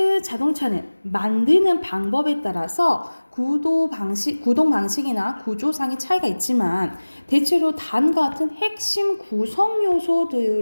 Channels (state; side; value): inverted; both; correlation -1.00